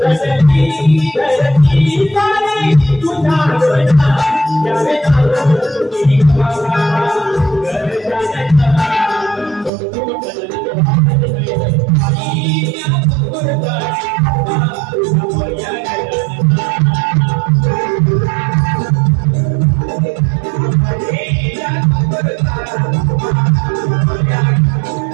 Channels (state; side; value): drops out; left; at 9.7 s